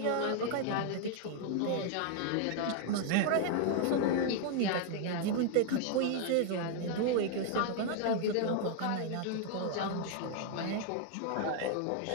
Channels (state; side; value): different; both; correlation 0.00